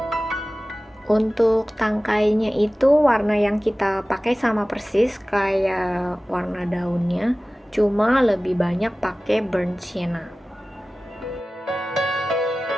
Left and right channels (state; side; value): normal; both; correlation 0.97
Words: Untuk tangkainya itu warna yang kita pakai sama persis kayak warna daunnya, cuma lebih banyak pakai burnt sienna.